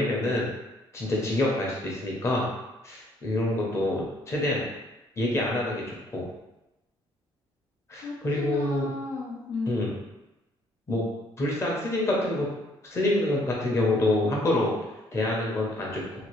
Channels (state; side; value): normal; both; correlation 0.65